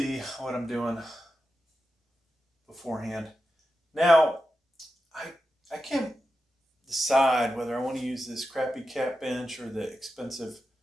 what I'm doing beforehand. Now, I can't decide whether I want to use this crappy cat bench or the expensive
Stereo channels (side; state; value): both; normal; correlation 0.90